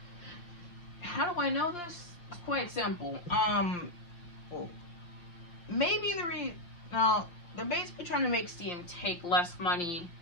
How do I know this? It's quite simple. Maybe they're basically trying to make Steam take less money.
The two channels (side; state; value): right; late; 5.7 ms